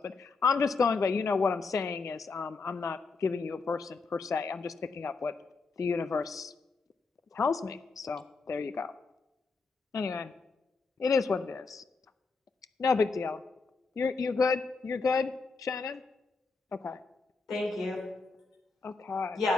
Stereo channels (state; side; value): quieter; right; 4.3 dB